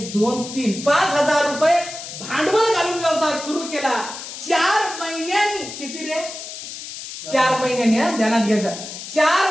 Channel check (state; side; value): noise; left; hiss, 10 dB below the sound